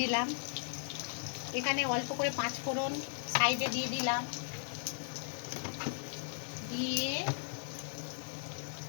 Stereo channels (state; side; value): silent; right; digital silence